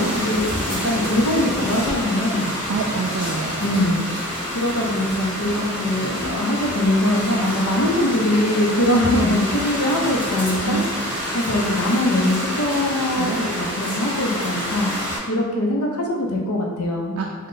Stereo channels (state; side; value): normal; both; correlation 0.43